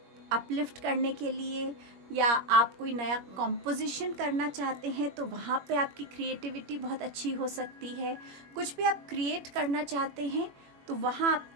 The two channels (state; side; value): late; left; 21 ms